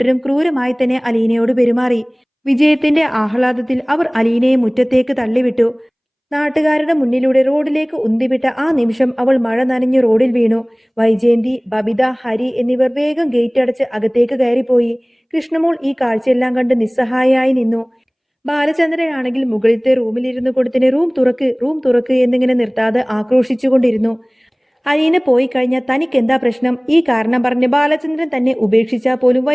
ക്രൂരമായി തന്നെ അലീനയോട് പെരുമാറി. വിജയത്തിന്റെ ആഹ്ലാദത്തിൽ അവർ അലീനയെ മുറ്റത്തേക്ക് തള്ളിവിട്ടു. നാട്ടുകാരുടെ മുന്നിലൂടെ റോഡിലേക്ക് ഉന്തിവിട്ട ആ നിമിഷം അവൾ മഴ നനഞ്ഞു റോഡിൽ വീണു. വൈജയന്തി, ബബിത, ഹരി എന്നിവർ വേഗം ഗേറ്റ് അടച്ച് അകത്തേക്ക് കയറിപ്പോയി. കൃഷ്ണമോൾ ഈ കാഴ്ചയെല്ലാം കണ്ട് നിസ്സഹായയായി നിന്നു. ബാലചന്ദ്രനാണെങ്കിൽ മുകളിലത്തെ റൂമിലിരുന്നു കൊടുത്തിന് റൂം തുറക്ക്, റൂം തുറക്ക് എന്നിങ്ങനെ നിർത്താതെ ആക്രോശിച്ചുകൊണ്ടിരുന്നു. അലീന പോയി കഴിഞ്ഞാൽ തനിക്കെന്താ പ്രശ്നം? ഈ കാരണം പറഞ്ഞ് ബാലചന്ദ്രൻ തന്നെ ഉപേക്ഷിച്ചാൽ പോലും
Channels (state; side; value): identical; both; correlation 1.00